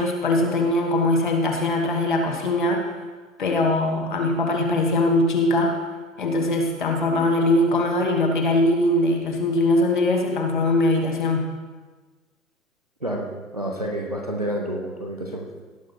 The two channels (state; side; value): normal; both; correlation 0.33